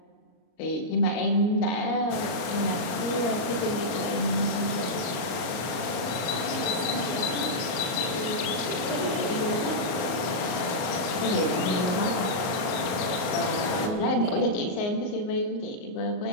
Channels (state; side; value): late; right; 38 ms